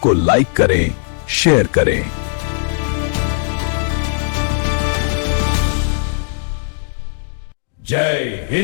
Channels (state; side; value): silent; right; digital silence